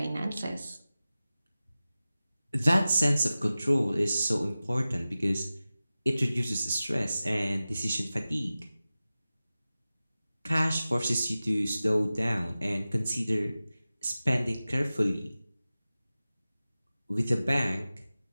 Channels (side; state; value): both; inverted; correlation -0.96